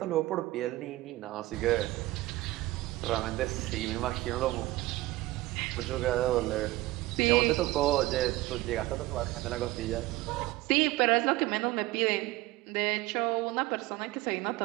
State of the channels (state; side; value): quieter; left; 18.4 dB